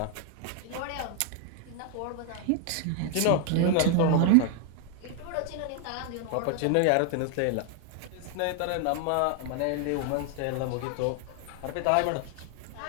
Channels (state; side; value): different; both; correlation 0.00